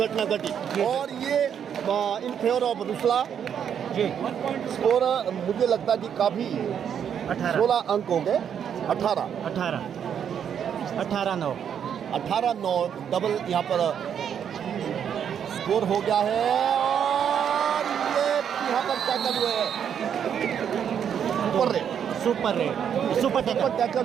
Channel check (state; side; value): quieter; left; 8.4 dB